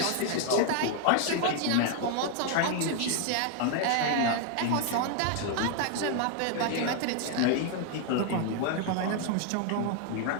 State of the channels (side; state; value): both; different; correlation 0.00